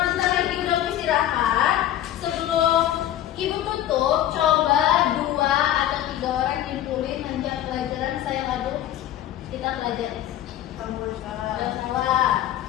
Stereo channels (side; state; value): right; quieter; 12.3 dB